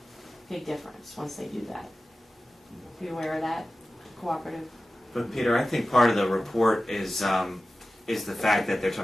big difference once they do that. Are you aware of that? Cooperative. But Peter, I think part of the report is the fact that they're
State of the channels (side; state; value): both; normal; correlation 0.95